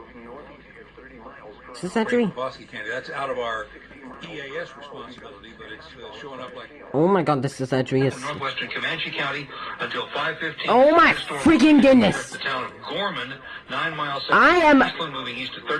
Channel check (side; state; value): both; identical; correlation 1.00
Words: Is this Edry? Bosque County. That's out of our EAS responsibility, but it's showing up like... Oh my god, this is Edry. Northwestern Comanche County until 5:15. Oh my freaking goodness! The town of Gorman, 9 miles south I am... of Eastland, moving east at